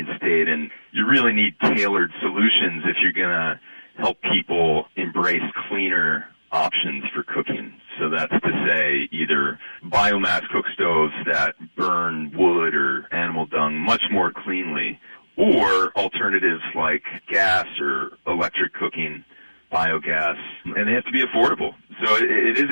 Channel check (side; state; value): both; inverted; correlation -1.00